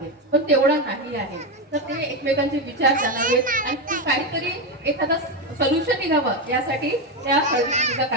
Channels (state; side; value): normal; both; correlation 0.11